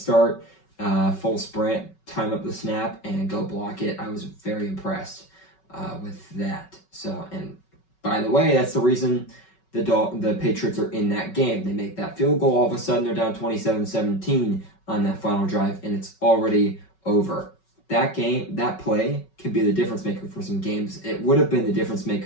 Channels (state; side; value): late; right; 5.3 ms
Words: full sprint, time up the snap, and go block it. I was very impressed with that. So, and by the way, that's the reason the Patriots are in that game. They make that field goal, all of a sudden they're down 27-17 on that final drive, and it's already over. That play can be the difference maker for some games. It would have been the difference